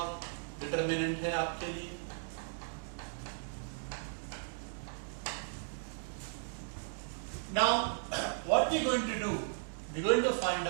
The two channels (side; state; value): left; silent; digital silence